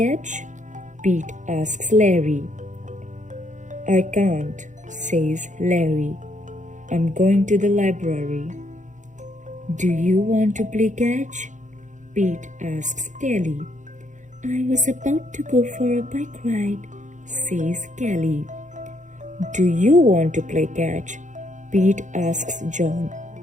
Pete asks Larry. I can't, says Larry. I'm going to the library. Do you want to play catch? Pete asks Kelly. I was about to go for a bike ride, says Kelly. Do you want to play catch? Pete asks John.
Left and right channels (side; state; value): left; late; 0.36 ms